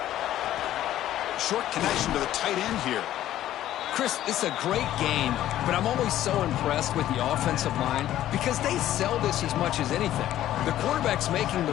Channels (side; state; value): right; quieter; 12.9 dB